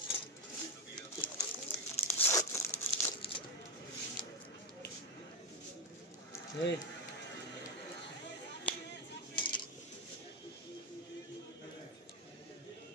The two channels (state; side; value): normal; both; correlation 0.10